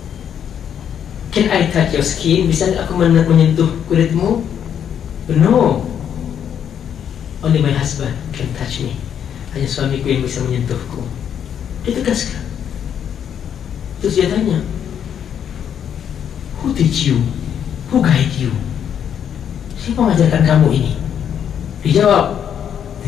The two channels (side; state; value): right; quieter; 8.8 dB